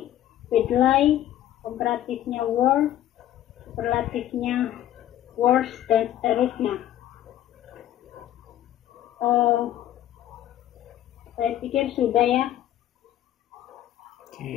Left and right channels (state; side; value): quieter; right; 12.4 dB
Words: komparatifnya worse, superlatifnya worse, dan seterusnya. Saya pikir sudah ya.